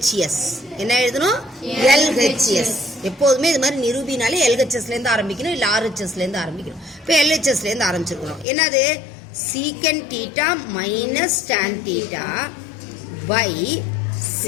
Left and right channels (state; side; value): drops out; right; at 8.5 s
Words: என்ன எழுதணும்? LHS. எப்போதுமே இது மாதிரி நிரூபினாலே LHSலேருந்து ஆரம்பிக்கணும், இல்லை RHSலேருந்து ஆரம்பிக்கணும். இப்போ LHSலேருந்து ஆரம்பிச்சிருக்கணும். என்னது? Secant theta minus tan theta by